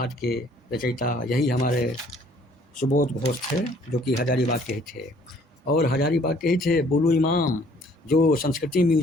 के रचयिता यही हमारे सुबोध घोष थे, जो कि हजारीबाग के ही थे। और हजारीबाग के ही थे बुलू इमाम, जो संस्कृति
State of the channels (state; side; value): normal; both; correlation 0.59